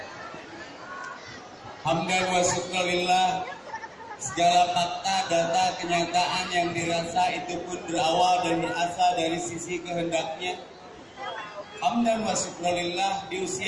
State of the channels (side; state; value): both; identical; correlation 1.00